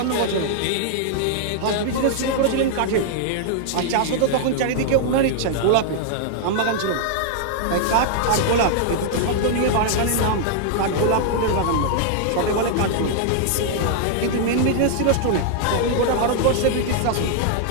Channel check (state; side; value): different; both; correlation -0.01